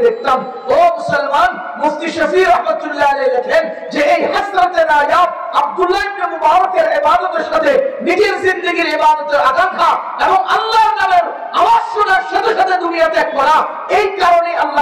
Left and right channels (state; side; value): identical; both; correlation 1.00